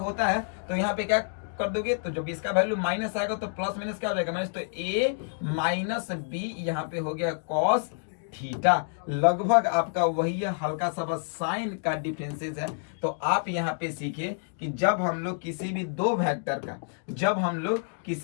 है तो यहाँ पे क्या कर दोगे, तो जब इसका वैल्यू माइनस आएगा तो प्लस माइनस क्या हो जाएगा, माइनस, तो a माइनस बी यहाँ पे हो गया कॉस थीटा, लगभग आपका वही है, हल्का सा बस साइन का डिफरेंसेस है। तो आप यहाँ पे सीखे कि जब हम लोग किसी भी दो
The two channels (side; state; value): right; silent; digital silence